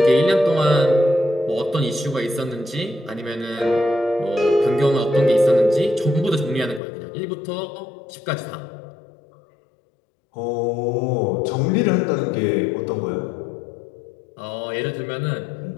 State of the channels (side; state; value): right; drops out; at 6.8 s